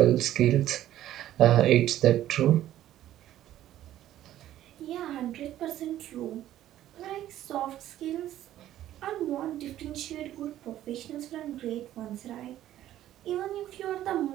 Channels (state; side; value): quieter; left; 12.9 dB